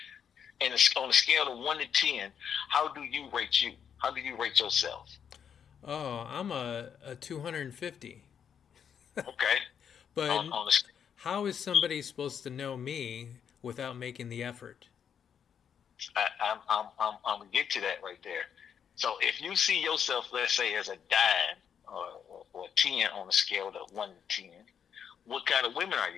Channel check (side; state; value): right; quieter; 7.9 dB